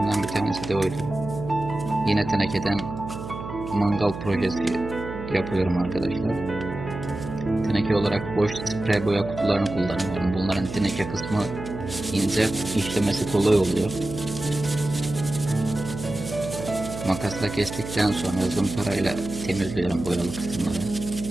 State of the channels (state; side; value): noise; right; hum, 9 dB below the sound